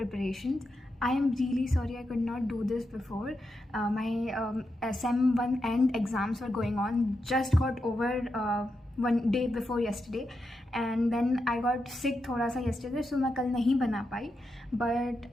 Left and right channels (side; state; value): both; normal; correlation 0.86